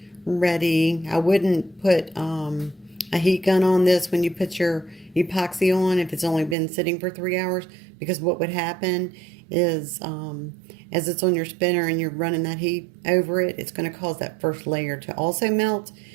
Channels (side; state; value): left; drops out; at 6.6 s